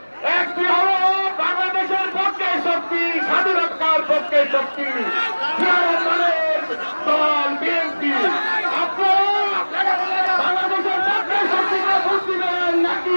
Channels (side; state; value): both; inverted; correlation -1.00